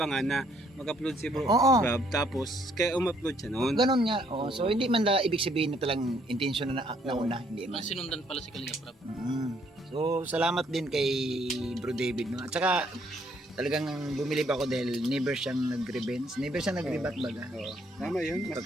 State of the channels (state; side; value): normal; both; correlation 0.67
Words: na mag-upload si bro Oo. Rob, tapos kaya um-upload siya noon. Ganon nga. Oh, so hindi man ibig sabihin na talang intention na nauna, hindi man. Mas sinundan pala si Kalinga Prab. So salamat din kay Bro David no. At saka talagang bumilib ako dahil never siyang nag-revenge, never siyang nag-rebat baga. Oo. Tama yun.